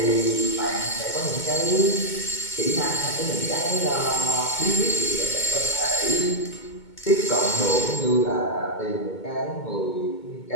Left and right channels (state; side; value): late; right; 2.2 ms